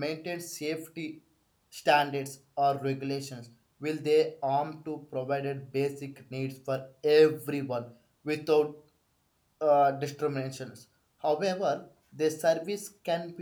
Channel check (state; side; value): identical; both; correlation 1.00